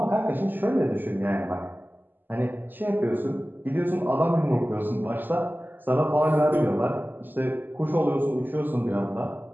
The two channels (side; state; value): left; late; 0.089 ms